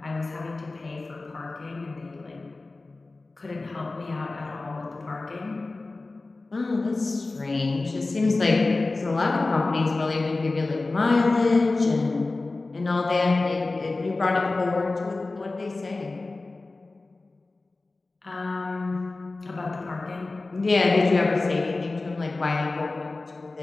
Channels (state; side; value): quieter; right; 3.3 dB